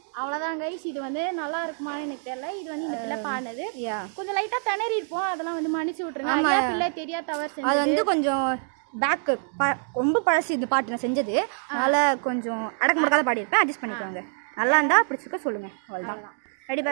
அவ்வளோதான் கைஸ். இது வந்து நல்லா இருக்குமான்னு எனக்கு தெரியல. இது வந்து இந்த பிள்ளை பாடினது. கொஞ்சம் லைட்டாக திணறி இருப்போம், அதெல்லாம் வந்து மன்னிச்சு விட்டுருங்க. பிள்ளை தெரியா தவறு அது வந்து கொஞ்சம் பேக்கு ரொம்ப பழசு இந்த பாட்டு நான் செஞ்சது, அதனால் கொஞ்சம் அடக்க முடக்காத பாடியிருப்பேன், அட்ஜஸ்ட் பண்ணிக்கோங்க. நல்லா இருந்தால் பிடிச்சிருக்க சொல்லுங்கள், அவ்வளோதான். ரெடி?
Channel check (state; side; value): silent; left; digital silence